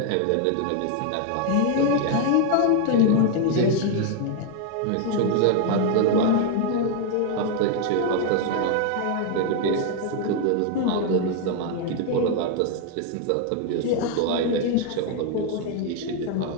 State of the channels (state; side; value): different; both; correlation 0.01